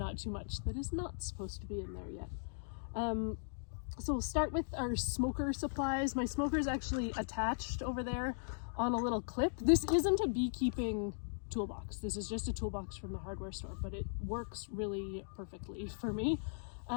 too much that is not supposed to be in there yet. So we'll start with our smoker supplies. My smoker is actually attached over there on a little clip. This isn't a beekeeping toolbox. This is just a toolbox from the hardware store, but it works really perfectly for me.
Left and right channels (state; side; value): silent; right; digital silence